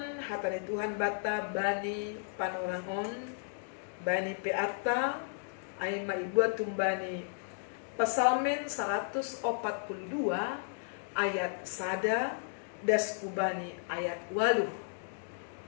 hatan Tuhan bata bani panorangon, bani peata, ay maibuat tumbani Pasalmen 142 ayat sada das kubani ayat 8.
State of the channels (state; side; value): silent; right; digital silence